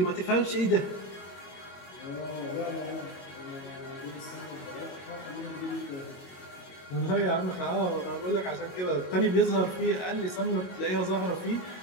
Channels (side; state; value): right; late; 22 ms